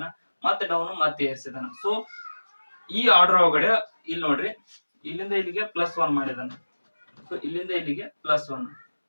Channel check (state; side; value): inverted; both; correlation -1.00